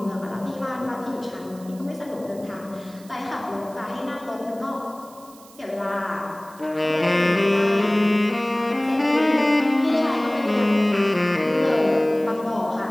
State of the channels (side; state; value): right; noise; hiss, 24 dB below the sound